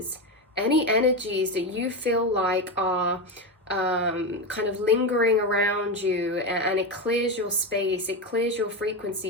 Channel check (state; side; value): normal; both; correlation 0.15